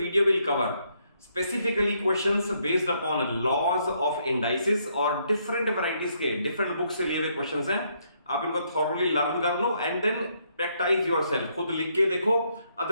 will cover specifically questions based upon laws of indices और डिफरेंट वैरायटीज के डिफरेंट बुक से लिए हुए क्वेश्चंस हैं। आप इनको थॉरली लर्न कर लो एंड देन प्रैक्टिस योरसेल्फ, खुद लिख के देखो,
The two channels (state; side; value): inverted; both; correlation -0.73